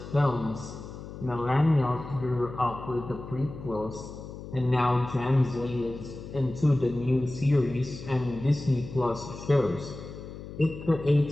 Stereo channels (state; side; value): noise; left; hum, 12 dB below the sound